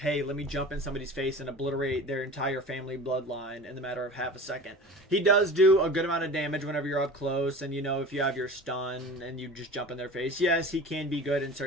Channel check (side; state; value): both; normal; correlation 0.37